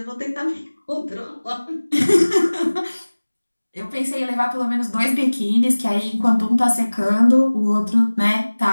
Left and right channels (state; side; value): inverted; both; correlation -1.00